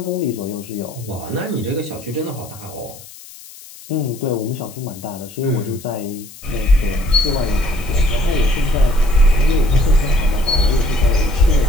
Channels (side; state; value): left; noise; hiss, 19 dB below the sound